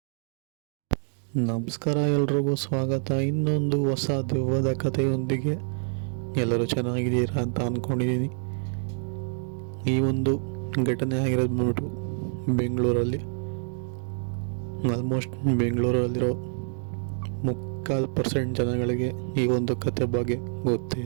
ನಮಸ್ಕಾರ, ಎಲ್ರಿಗೂ ಸ್ವಾಗತ. ಇನ್ನೊಂದು ಹೊಸ ದೆವ್ವದ ಕಥೆಯೊಂದಿಗೆ. ಎಲ್ಲರೂ ಚೆನ್ನಾಗಿದ್ದೀರಾ ಅಂತ ಅಂದ್ಕೊಂಡಿದ್ದೀನಿ. ಈ ಒಂದು ಘಟನೆ ಆಗಿರೋದು ಬಂದ್ಬಿಟ್ಟು ಬೆಂಗಳೂರಲ್ಲಿ. ಆಲ್ಮೋಸ್ಟ್ ಬೆಂಗಳೂರಲ್ಲಿರೋ 3% ಜನಗಳಿಗೆ ಈ ಒಂದು ಕತೆ ಬಗ್ಗೆ ಗೊತ್ತೇ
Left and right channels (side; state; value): left; silent; 60 dB below the other